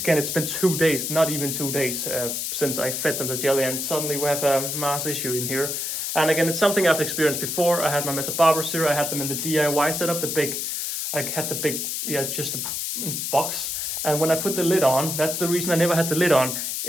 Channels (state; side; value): noise; left; hiss, 2 dB below the sound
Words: it's been 2 days, not even 2 days, since I fed them the jelly, and suddenly we have a mass issue in here. And again, it's something I've experienced before. I had my Mr. Barber cereal. I had them in the DIY setup, just a box. And when I put the lid on, that's the reason I never had the lid on.